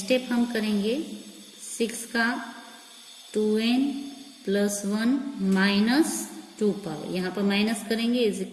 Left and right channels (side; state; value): both; identical; correlation 1.00